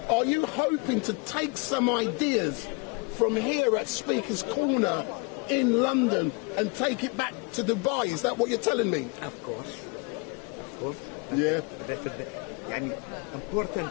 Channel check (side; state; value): right; quieter; 29.9 dB